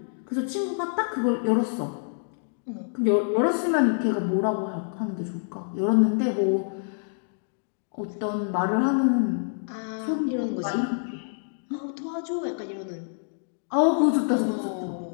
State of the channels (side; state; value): right; silent; digital silence